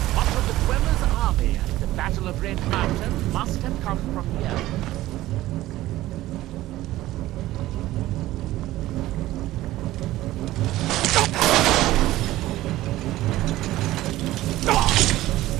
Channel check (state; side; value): quieter; left; 16.0 dB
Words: Much of the Dwemer's army at the Battle of Red Mountain must have come from here.